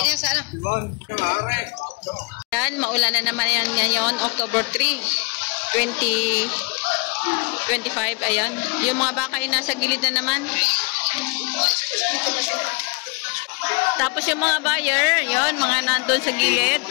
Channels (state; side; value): quieter; right; 32.1 dB